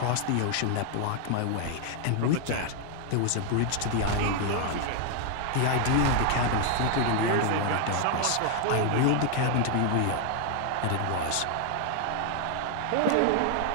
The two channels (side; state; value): both; different; correlation 0.00